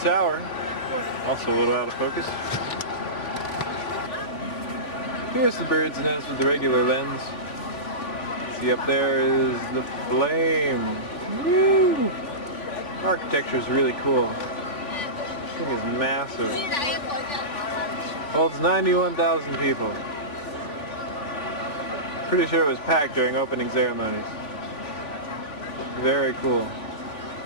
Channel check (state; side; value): late; right; 3.5 ms